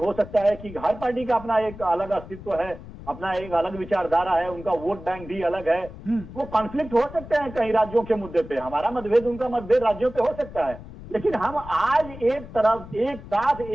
सकता है कि हर पार्टी का अपना एक अलग अस्तित्व है, अपना एक अलग विचारधारा है, उनका वोट बैंक भी अलग है, वो कॉन्फ्लिक्ट हो सकते हैं कई राज्यों के मुद्दे पे, हमारा मतभेद उनका मतभेद राज्यों पे हो सकता है, लेकिन हम आज एक तरफ एक साथ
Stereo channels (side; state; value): left; noise; rumble, 15 dB below the sound